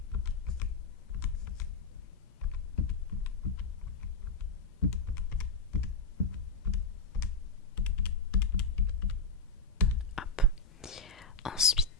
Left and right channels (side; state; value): right; quieter; 3.5 dB